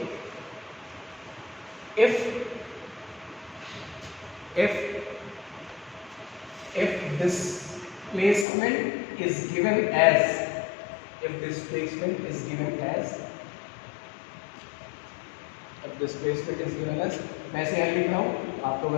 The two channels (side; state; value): right; drops out; at 8.5 s